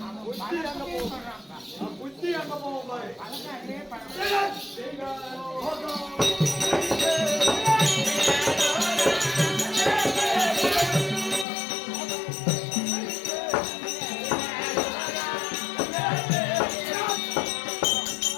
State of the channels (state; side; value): drops out; right; at 11.5 s